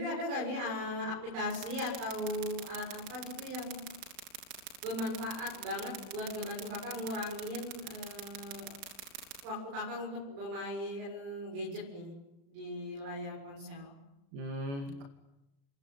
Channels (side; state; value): left; late; 36 ms